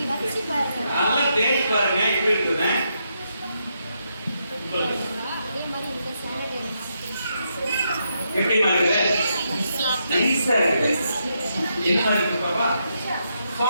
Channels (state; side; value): inverted; both; correlation -0.81